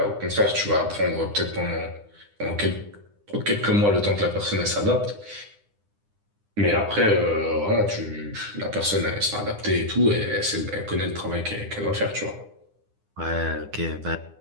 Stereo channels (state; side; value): late; left; 9.9 ms